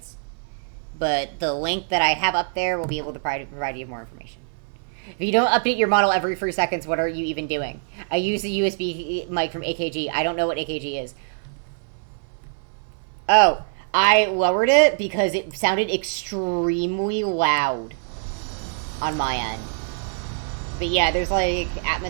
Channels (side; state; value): left; silent; 60 dB below the other